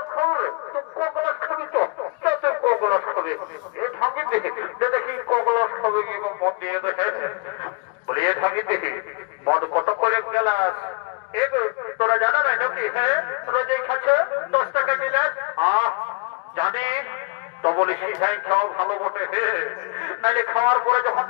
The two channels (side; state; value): right; quieter; 31.7 dB